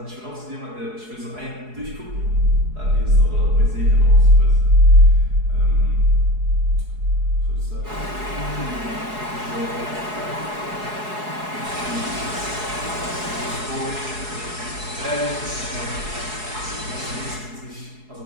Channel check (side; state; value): left; late; 4.7 ms